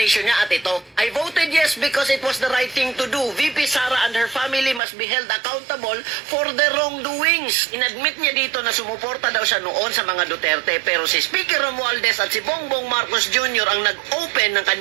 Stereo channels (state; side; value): drops out; left; at 4.8 s